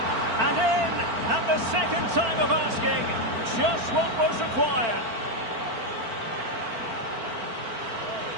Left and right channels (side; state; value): left; late; 4.4 ms